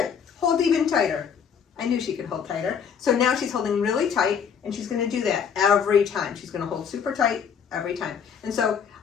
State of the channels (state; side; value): quieter; right; 7.2 dB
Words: Hold even tighter. I knew she could hold tighter. So now she's holding really tight, and she's going to do that every time. She's going to hold super tight every time. And so